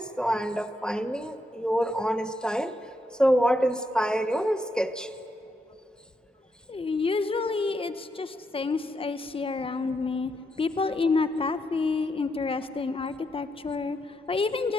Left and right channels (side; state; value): both; normal; correlation 0.80